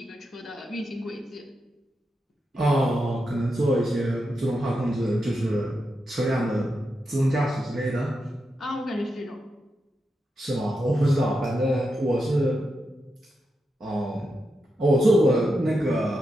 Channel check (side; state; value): both; normal; correlation 0.87